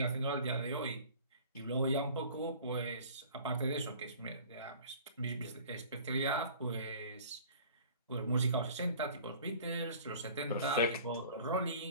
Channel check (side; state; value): both; inverted; correlation -0.46